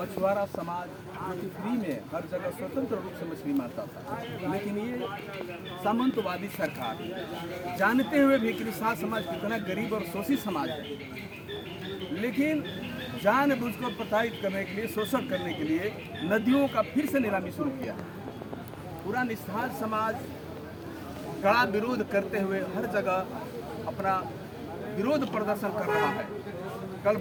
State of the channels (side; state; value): both; identical; correlation 1.00